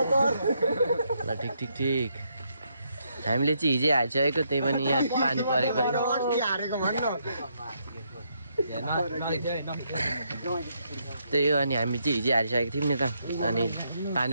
ल ठिक हामीले चाहिँ हिजै हालिसकेको, त्यही पनि यहाँ पानी परेको त्यही हो। अनि हामी चाहिँ हिजै हालिसकेको थियौँ नि त, अनि पानी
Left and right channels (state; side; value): inverted; both; correlation -0.76